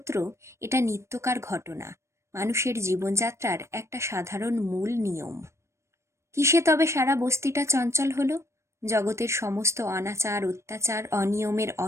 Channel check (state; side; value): late; left; 0.13 ms